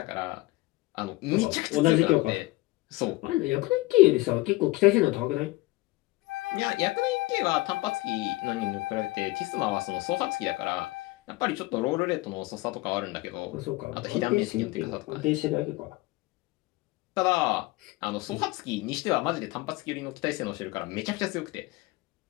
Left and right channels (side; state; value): right; quieter; 20.7 dB